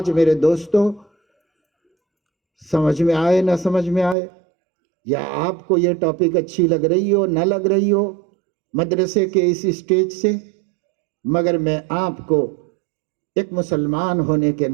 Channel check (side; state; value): left; drops out; at 4.2 s